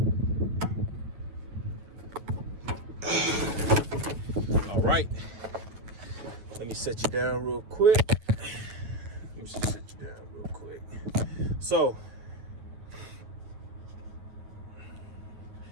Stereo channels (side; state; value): left; late; 9.2 ms